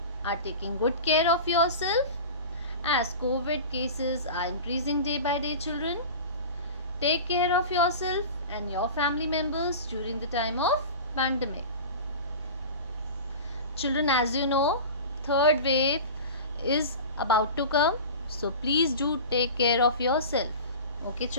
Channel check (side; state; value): both; inverted; correlation -0.33